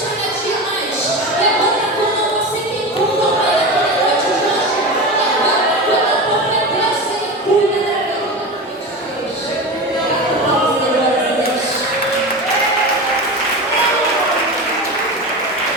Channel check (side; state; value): both; normal; correlation 0.25